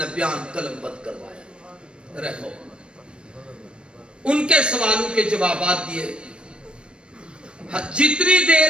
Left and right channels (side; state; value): left; late; 0.056 ms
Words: بیان قلم بند کروایا. رہو ان کے سوالوں کے جوابات دیے. جتنی دیر